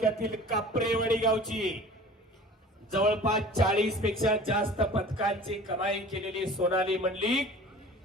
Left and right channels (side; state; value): both; normal; correlation 0.43